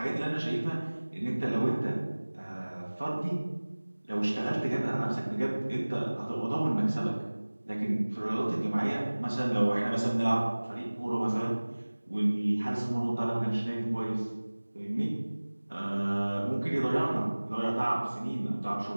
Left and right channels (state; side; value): inverted; both; correlation -1.00